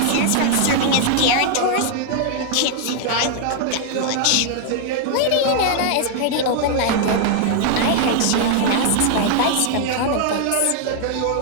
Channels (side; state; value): both; different; correlation 0.00